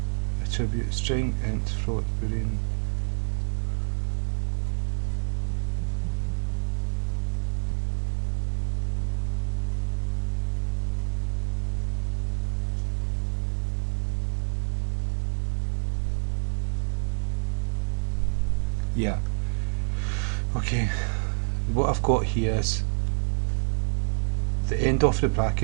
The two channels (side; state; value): left; silent; digital silence